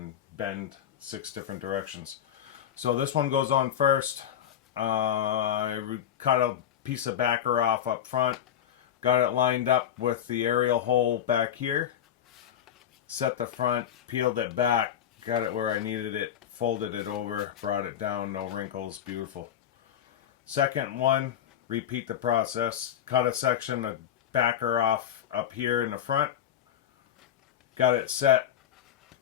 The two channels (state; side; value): quieter; right; 9.8 dB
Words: bend 6 different directions. So this one goes on first. I cut a piece of backer off up front, got it lined up with the aerial hole back here, set the front, peeled it back, got it where I needed it, folded it over, brought it down, no wrinkles, beautiful. Second one, repeat the process, cut a section of backer off up here in the front, got it set.